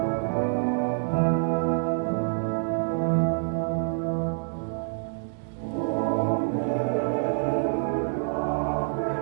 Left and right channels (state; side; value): silent; left; digital silence